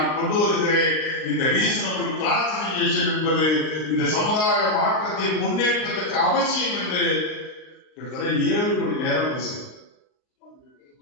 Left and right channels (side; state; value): right; late; 39 ms